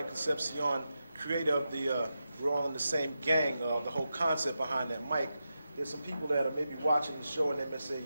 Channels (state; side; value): inverted; both; correlation -0.89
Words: Concepcion, creator of the We're All in the Same Gang, the whole concept behind that. Mike, there's some people that are maybe watching the show and they may say,